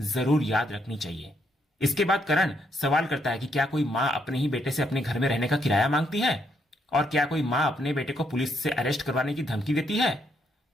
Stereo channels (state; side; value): normal; both; correlation 0.75